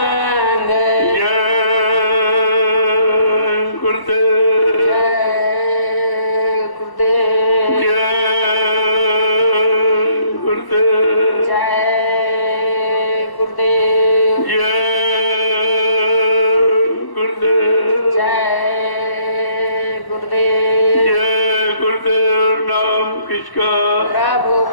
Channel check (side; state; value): right; late; 1.1 ms